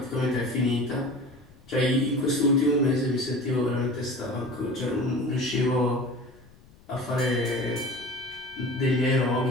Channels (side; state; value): left; noise; rumble, 26 dB below the sound